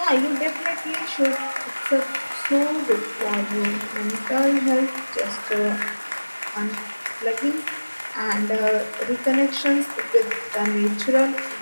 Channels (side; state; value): both; inverted; correlation -1.00